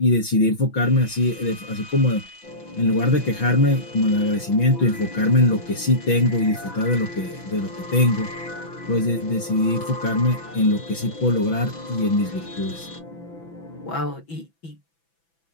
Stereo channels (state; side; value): late; right; 6.0 ms